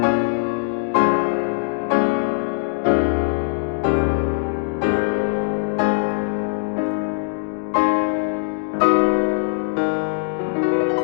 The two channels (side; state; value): right; silent; digital silence